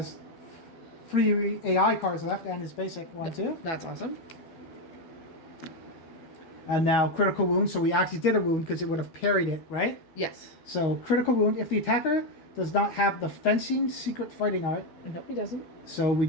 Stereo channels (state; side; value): late; right; 13 ms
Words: 3 AI cards left and his basic 1 too. That's awesome. And now critical wound. So we actually did a wound because it would have parried it, right? Yes. So critical wound. If the attacker does not have the fencing secret fighting art. Nope, he doesn't. So we